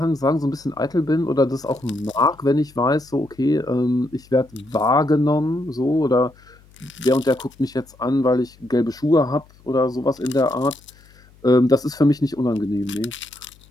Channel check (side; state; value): left; noise; hum, 27 dB below the sound